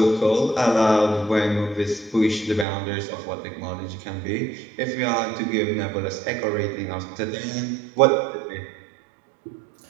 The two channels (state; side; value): drops out; left; at 2.7 s